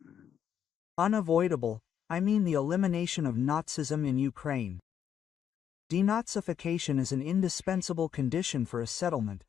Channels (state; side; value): quieter; right; 8.9 dB